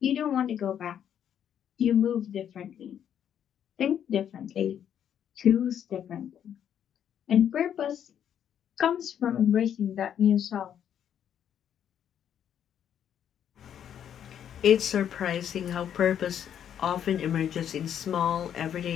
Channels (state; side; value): quieter; right; 9.3 dB